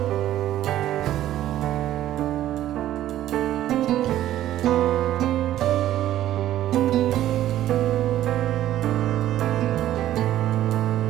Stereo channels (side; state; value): left; quieter; 13.0 dB